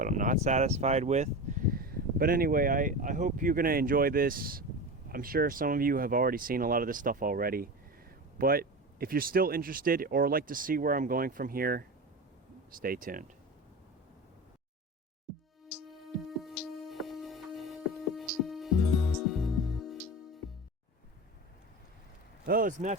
I'm not satisfied with. But anyway, I hope you're going to enjoy this. I'm sure some of you have already seen a lot of this stuff already. But if you're still interested or like to see where I'm going from here, stay tuned. Hello, it's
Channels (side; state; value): both; normal; correlation 0.27